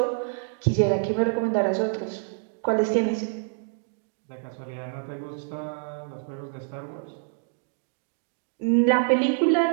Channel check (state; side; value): silent; left; digital silence